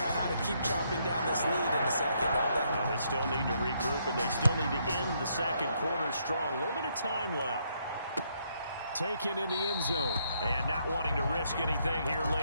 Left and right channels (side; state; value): both; inverted; correlation -0.73